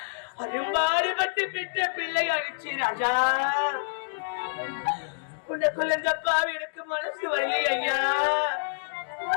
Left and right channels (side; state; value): right; silent; digital silence